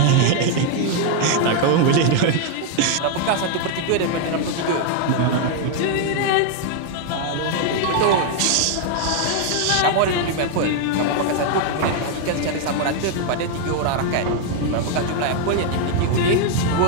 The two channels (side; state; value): both; different; correlation 0.01